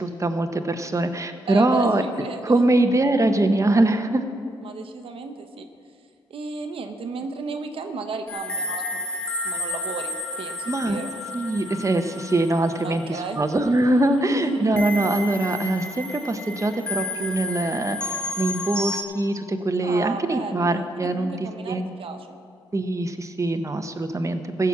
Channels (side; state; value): both; normal; correlation 0.75